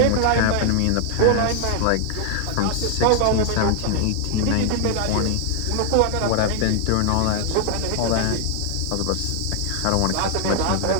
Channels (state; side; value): different; both; correlation 0.00